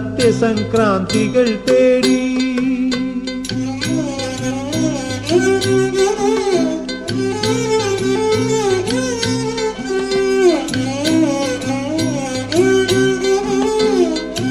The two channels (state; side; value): identical; both; correlation 1.00